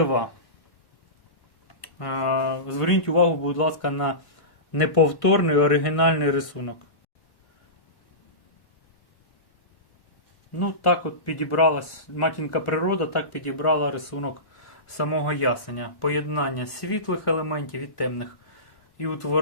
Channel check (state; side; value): late; right; 1.1 ms